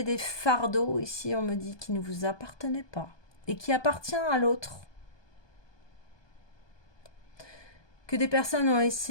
des fardeaux, ici on me dit, qui ne vous appartenaient pas et qui appartient à l'autre. Que des personnes ont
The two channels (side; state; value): right; late; 1.2 ms